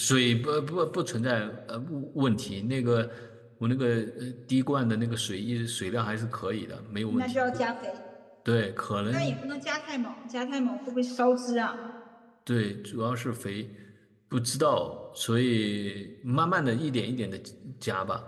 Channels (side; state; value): both; identical; correlation 1.00